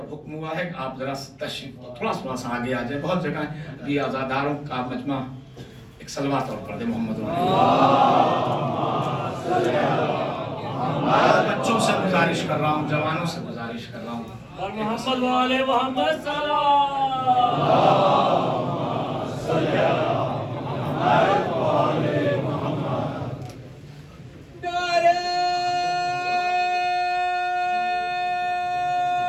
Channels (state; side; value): identical; both; correlation 1.00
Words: حکم ہوا ہے کہ آپ ذرا تشریف تھوڑا سا آگے آ جائیں، بہت جگہ بھی آزاداروں کا مجمع ایک صلوات اور پڑھ دے محمد بچوں سے گزارش کر رہا ہوں، جوانوں سے گزارش کر رہا ہوں، اور محمد والے محمد سلام